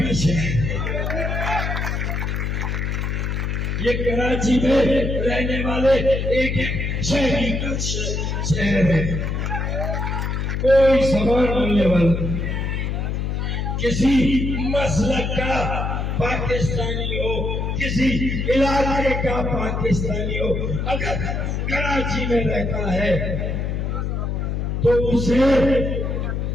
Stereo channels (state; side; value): noise; left; hum, 1 dB below the sound